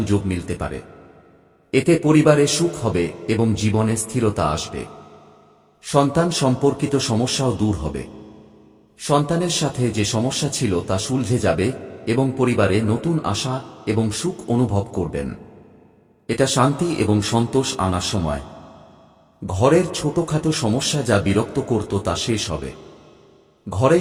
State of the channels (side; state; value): both; identical; correlation 1.00